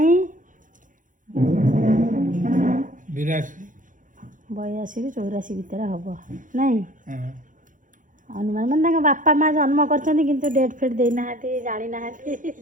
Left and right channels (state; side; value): late; left; 0.38 ms